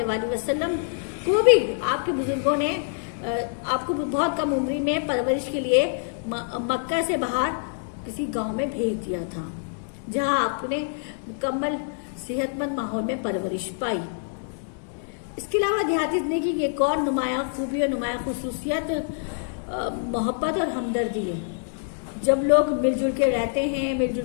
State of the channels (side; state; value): right; silent; digital silence